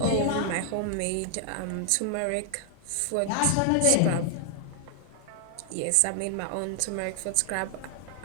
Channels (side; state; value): both; different; correlation 0.00